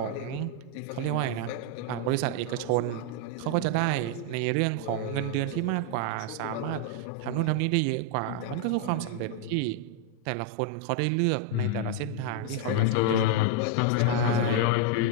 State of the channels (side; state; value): both; different; correlation 0.00